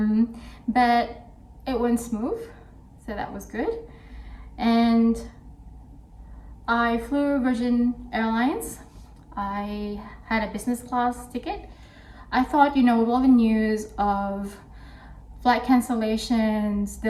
but it went smooth, so that was good. And I flew Virgin Airlines. I had a business class ticket. I thought, with all the news of flight cancellations,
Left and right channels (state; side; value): identical; both; correlation 1.00